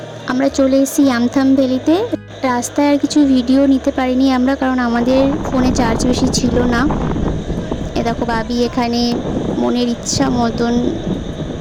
আমরা চলে এসেছি আমথাম ভ্যালিতে। রাস্তায় আর কিছু ভিডিও নিতে পারিনি আমরা, কারণ আমাদের ফোনে চার্জ বেশি ছিল না। এ দেখো বাবি এখানে মনের ইচ্ছা মতন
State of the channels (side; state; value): both; identical; correlation 1.00